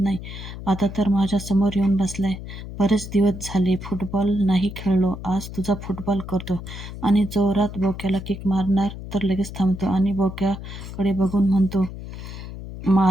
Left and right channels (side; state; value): left; noise; hum, 10 dB below the sound